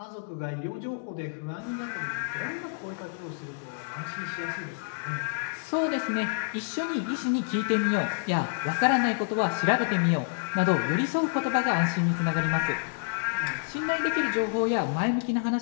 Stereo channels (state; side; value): silent; right; digital silence